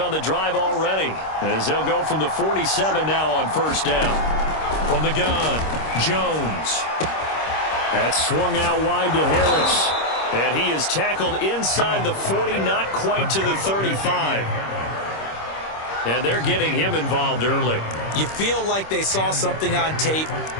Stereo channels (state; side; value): late; right; 26 ms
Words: the drive already, as they'll go from the 47 now on first down. From the gun, Jones. That's swung out wide to Harris. And he is tackled inside the 40, not quite to the 35. And they're getting him involved early. You feel like they saw something on tape,